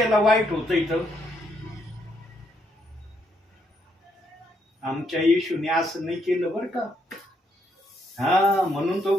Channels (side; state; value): both; normal; correlation 0.75